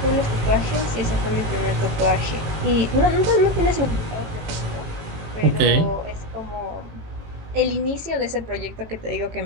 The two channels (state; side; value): late; left; 18 ms